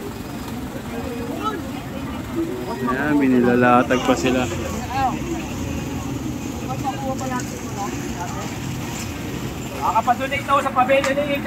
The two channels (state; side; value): identical; both; correlation 1.00